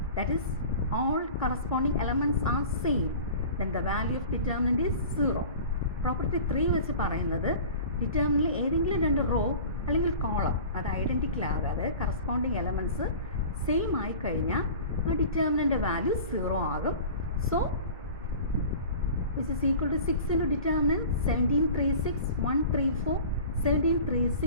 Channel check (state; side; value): inverted; both; correlation -0.40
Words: that is all corresponding elements are same, then the value of determinant is 0. Property 3 വെച്ച് പറയുന്നത് ഡിറ്റർമിനൻ്റിൽ ഏതെങ്കിലും രണ്ട് raw അല്ലെങ്കിൽ column അത് identical ആകാതെ corresponding elements same ആയിക്കഴിഞ്ഞാൽ ആ determinant value 0 ആകും. So which is equal to 6 into determinant 17, 3, 6, 1, 3, 4, 17, 3,